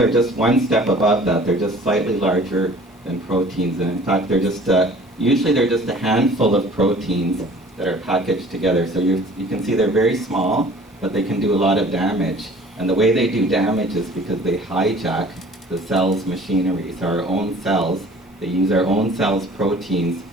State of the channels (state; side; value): normal; both; correlation 0.49